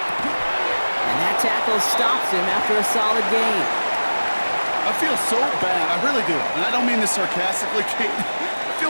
that tackle stops him after a solid gain. I feel so bad. I really do. And I don't mean this sarcastically, Kate. I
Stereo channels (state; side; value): inverted; both; correlation -1.00